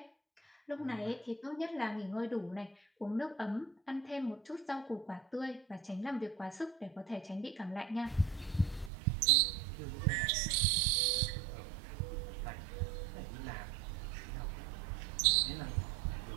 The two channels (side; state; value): left; drops out; at 8.9 s